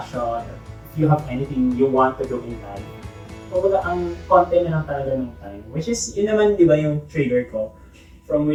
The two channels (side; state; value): both; identical; correlation 1.00